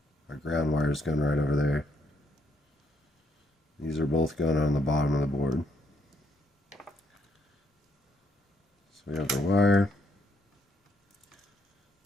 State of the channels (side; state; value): both; normal; correlation 0.74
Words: our ground wire is going right over there. These are both going on the bottom of the board. So we have our wire.